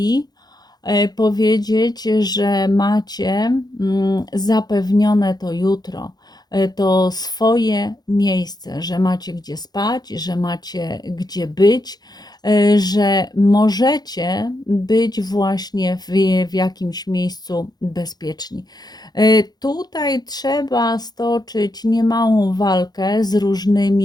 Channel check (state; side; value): late; right; 0.19 ms